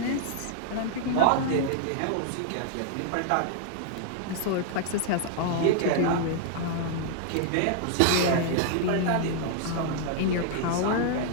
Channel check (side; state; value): both; different; correlation -0.01